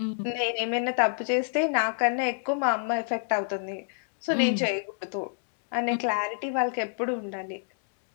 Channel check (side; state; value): right; silent; digital silence